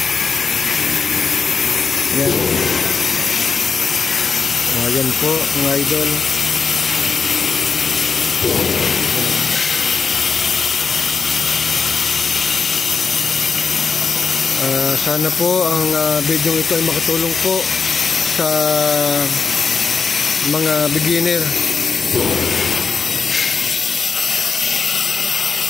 Yan. Yan po mga idol. Sana po ang video ito ay makatulong po sa mga beginner.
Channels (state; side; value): quieter; right; 5.2 dB